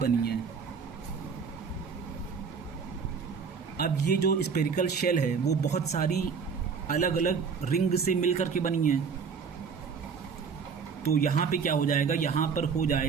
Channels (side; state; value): left; quieter; 5.9 dB